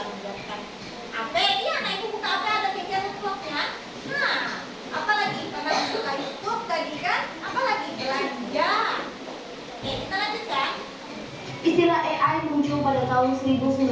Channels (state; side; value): identical; both; correlation 1.00